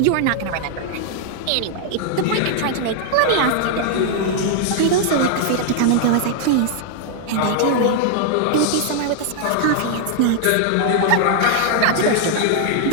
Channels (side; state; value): both; different; correlation 0.00